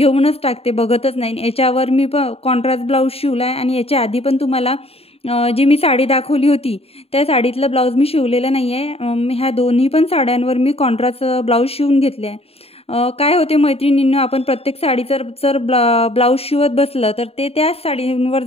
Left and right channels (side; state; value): right; late; 0.29 ms